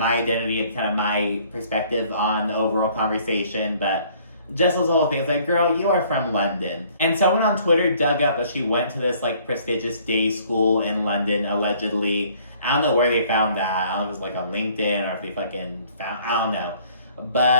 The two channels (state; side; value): inverted; both; correlation -0.58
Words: identity and kind of my perspective on the overall conversation, but Jessel's whole thing is like, girl, you are from London. And someone on Twitter dug up that she went to this, like, prestigious day school in London, allegedly. I don't know where they found that. I don't know if it was, like, on LinkedIn or if they fucking found, I don't know.